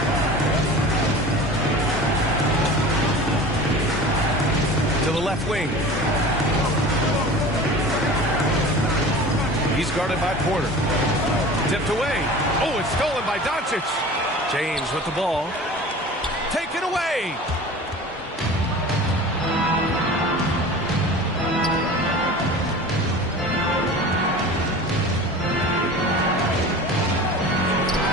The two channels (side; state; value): both; normal; correlation 0.38